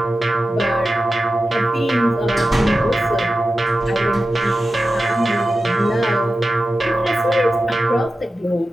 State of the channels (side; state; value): both; normal; correlation 0.93